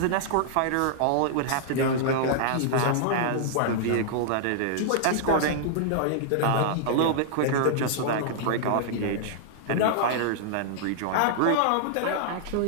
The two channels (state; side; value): different; both; correlation -0.01